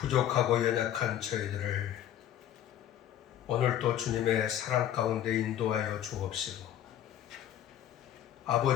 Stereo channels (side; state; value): right; quieter; 11.1 dB